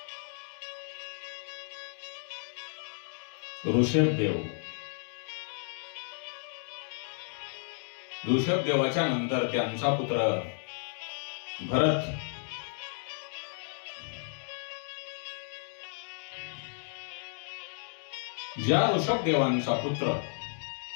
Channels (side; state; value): right; silent; 56 dB below the other